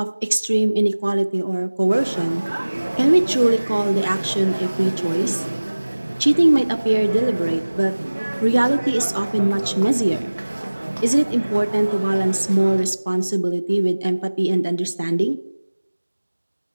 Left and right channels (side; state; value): both; inverted; correlation -1.00